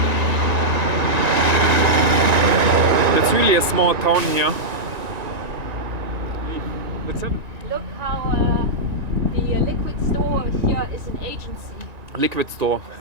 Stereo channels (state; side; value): late; left; 1.9 ms